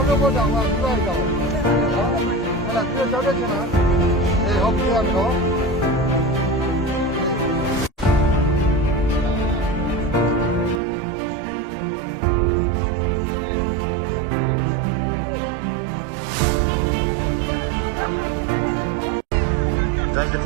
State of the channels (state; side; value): drops out; left; at 10.8 s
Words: းလို့တော့တောင်းပါပြီးလိုက်တော့ဟုတ်လားဒီကြောင်းတက်ချင်လားဟုတ်ပြီရမယ်နော်ဒါတစ်ခ